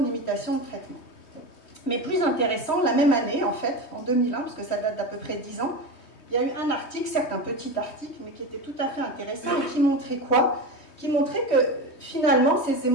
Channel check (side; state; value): right; late; 3.2 ms